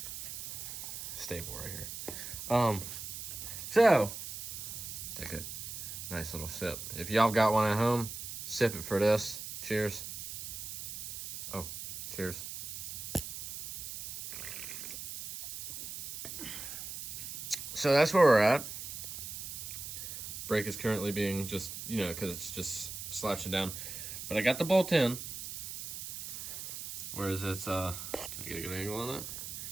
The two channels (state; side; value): noise; right; hiss, 8 dB below the sound